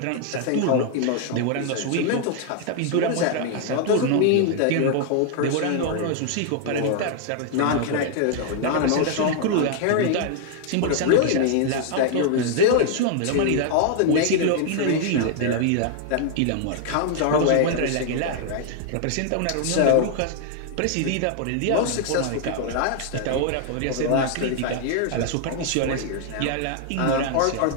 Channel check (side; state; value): both; different; correlation 0.00